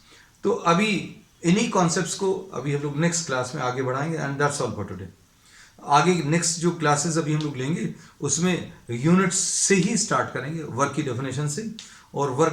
तो अभी इन्हीं कॉन्सेप्ट्स को अभी हम लोग नेक्स्ट क्लास में आगे बढ़ाएंगे, and that's all for today. आगे नेक्स्ट जो क्लासेस अभी हम लोग लेंगे उसमें यूनिट्स से ही स्टार्ट करेंगे, वर्क की डेफिनेशन से, और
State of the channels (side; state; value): both; identical; correlation 1.00